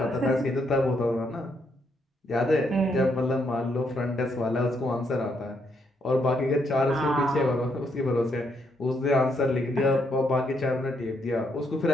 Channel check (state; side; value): normal; both; correlation 0.75